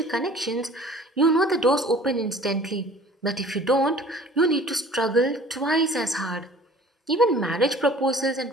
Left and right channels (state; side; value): normal; both; correlation 0.48